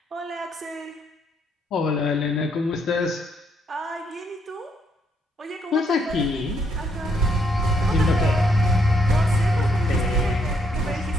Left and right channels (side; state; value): both; normal; correlation 0.73